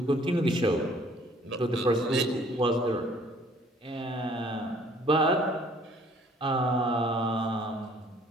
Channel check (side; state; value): both; normal; correlation 0.57